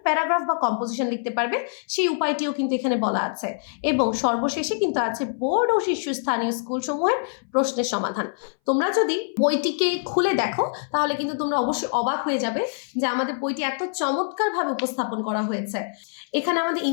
প্যারাগ্রাফ বা কম্পোজিশন লিখতে পারবে সেই উপায়টিও কিন্তু এখানে বলা আছে। এবং সর্বশেষে কিন্তু আছে বোর্ড ও শীর্ষস্থানীয় স্কুলসমূহের প্রশ্নের সমাধান। তোমরা যদি বইটিকে খুলে দেখো তাহলে কিন্তু তোমরা অবশ্যই অবাক হয়ে যাবে যে আমাদের বইটি এত চমৎকারভাবে উপস্থাপন করা হয়েছে। এখানে আমাদের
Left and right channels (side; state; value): right; silent; 60 dB below the other